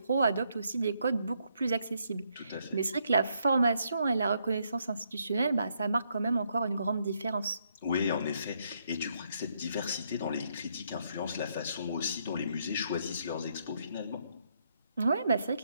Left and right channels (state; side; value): inverted; both; correlation -0.75